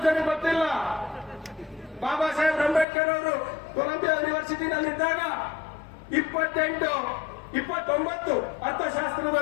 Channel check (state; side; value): drops out; right; at 2.9 s